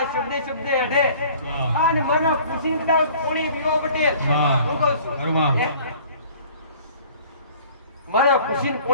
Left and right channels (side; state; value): both; inverted; correlation -0.50